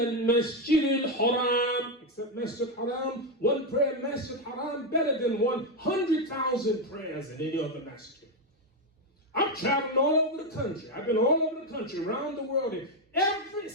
الْحَرَامِ Except Masjid Haram, one prayer in Masjid Haram better than 100,000 prayers in any other masjid. I've traveled all over the country. I've been all over the country, around the world. In every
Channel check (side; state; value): both; normal; correlation 0.07